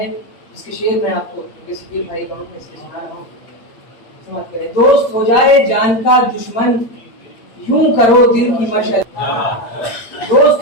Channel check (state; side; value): late; right; 8.7 ms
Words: जिसके शेर में आपको सकील भाई कहूँ मैं इसके सुना रहा हूँ, समझ करें। दोस्त हो जाए जान का दुश्मन, यूं करो दिल की मशल, दोस्त